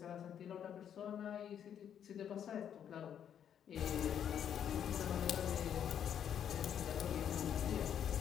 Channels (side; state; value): right; quieter; 9.0 dB